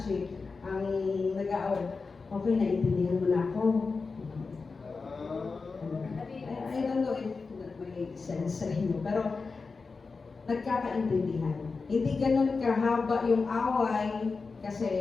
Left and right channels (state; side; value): quieter; right; 4.4 dB